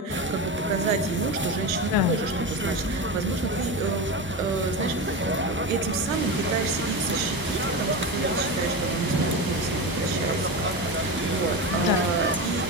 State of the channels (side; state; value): both; normal; correlation 0.21